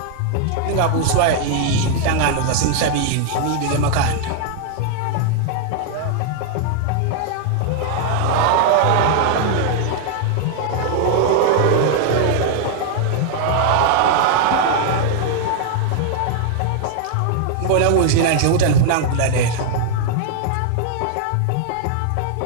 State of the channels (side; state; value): both; different; correlation 0.00